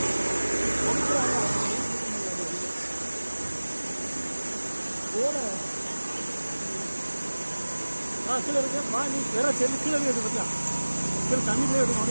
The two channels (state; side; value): inverted; both; correlation -1.00